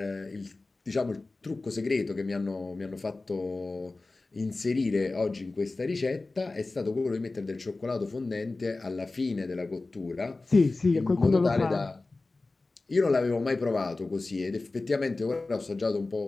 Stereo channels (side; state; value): right; quieter; 3.3 dB